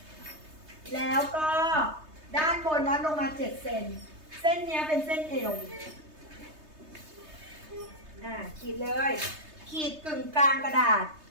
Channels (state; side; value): late; left; 3.2 ms